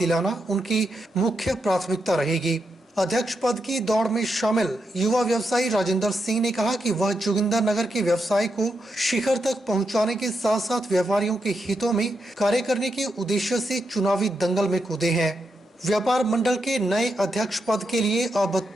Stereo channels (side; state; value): both; normal; correlation 0.84